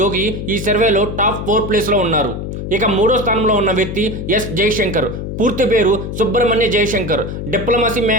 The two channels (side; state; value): left; noise; hum, 6 dB below the sound